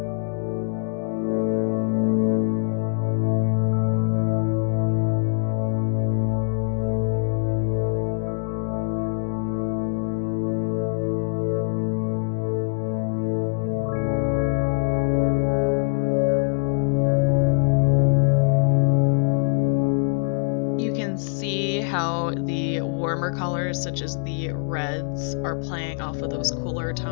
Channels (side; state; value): right; silent; 59 dB below the other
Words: How the warmer colors, such as the reds, are playing off of those cooler